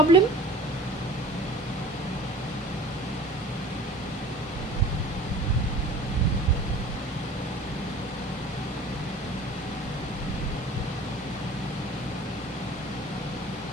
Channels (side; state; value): both; normal; correlation 0.43